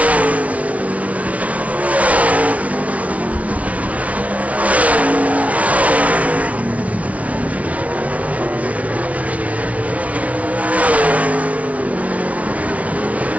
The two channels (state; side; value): late; left; 0.067 ms